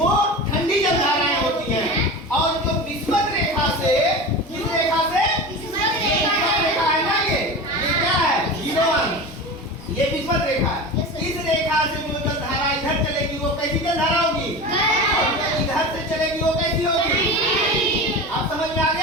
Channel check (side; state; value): both; normal; correlation 0.30